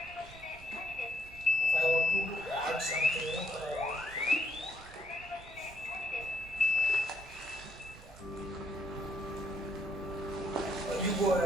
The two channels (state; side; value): noise; right; rumble, 20 dB below the sound